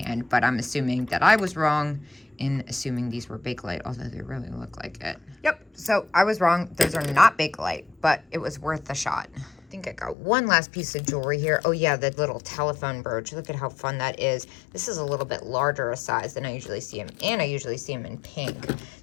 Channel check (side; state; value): right; drops out; at 10.2 s